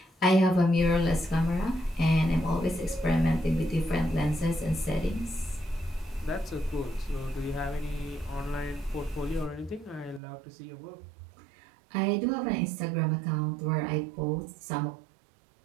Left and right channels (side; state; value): left; drops out; at 10.2 s